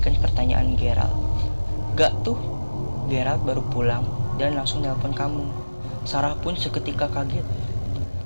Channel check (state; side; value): inverted; both; correlation -1.00